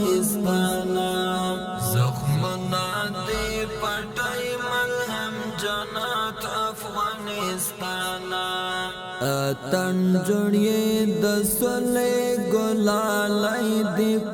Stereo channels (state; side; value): identical; both; correlation 1.00